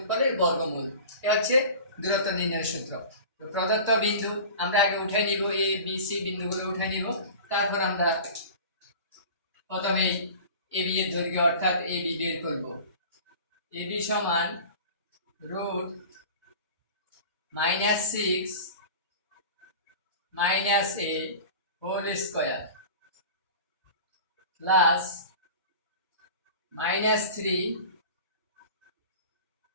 বর্গমূল। এটা হচ্ছে দূরত্ব নির্ণয়ের সূত্র। তো প্রদত্ত বিন্দু আমরা আগে উঠে নিব, এ বি সি বিন্দুগুলো উঠে নিব। তারপর আমরা প্রথমে এ বি এর দৈর্ঘ্য অর্থাৎ এ বি বের করব। এ বি সমান √-6 - a whole square plus -3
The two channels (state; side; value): inverted; both; correlation -0.37